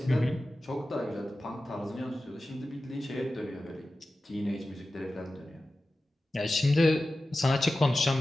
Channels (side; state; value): both; normal; correlation 0.94